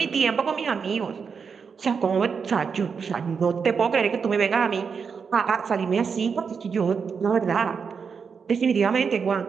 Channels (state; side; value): quieter; left; 5.9 dB